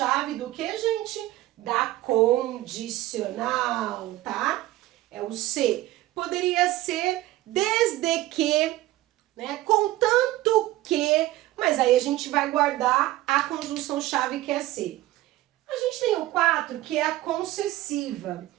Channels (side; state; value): left; quieter; 16.4 dB